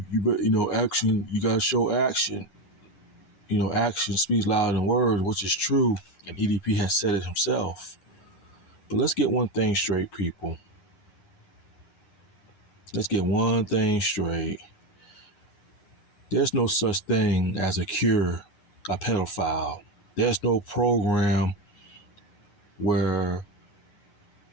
action, you gotta show action. Action speaks louder than words, which is true, and EDP has said it himself. But let's get one thing straight, people. Let's get one thing straight. There's no such thing as a cure a pedophile. There's no program where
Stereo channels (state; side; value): late; right; 9.6 ms